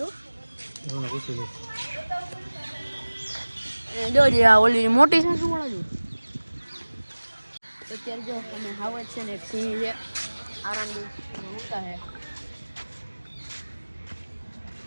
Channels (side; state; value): both; inverted; correlation -1.00